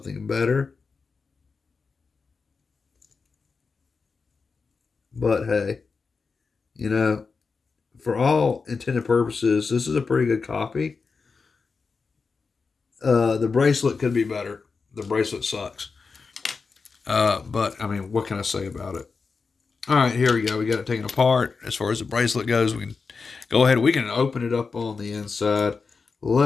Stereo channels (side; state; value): right; quieter; 4.8 dB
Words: better. But hey, you know, for all intended purposes, this is a pretty good copy. The bracelet could be better. The bracelet sucks. But I mean, what can I say about it? All right, here we go. We got it taken apart. As far as the bracelet goes, we can go ahead. We can open it up on the inside.